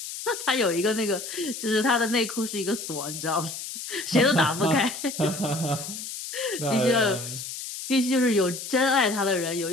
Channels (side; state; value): left; noise; hiss, 8 dB below the sound